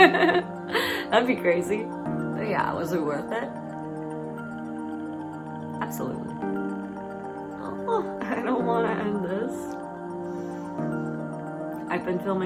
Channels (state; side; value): identical; both; correlation 1.00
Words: That'd be crazy. But yeah, was it worth it? Absolutely. Oh, I don't want to end this. I've been